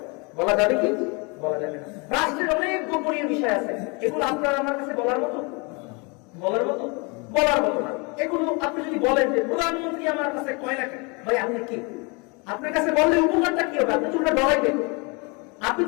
বলা যাবে কি বলা যাবে না? রাষ্ট্রের অনেক গোপনীয় বিষয় আছে, এগুলো আপনার আমার কাছে বলার মতো বলার মতো না। এগুলো আপনি যদি বলেন যে প্রধানমন্ত্রী আমার কাছে কয় না, ভাই আপনি কি, আপনার কাছে বললে উপকারটা কি হবে? আপনি তো ওটা ডরাইবেন, আপনি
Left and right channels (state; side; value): quieter; right; 30.4 dB